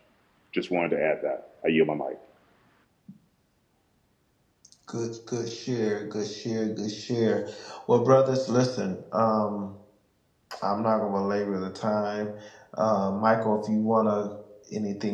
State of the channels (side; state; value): both; identical; correlation 1.00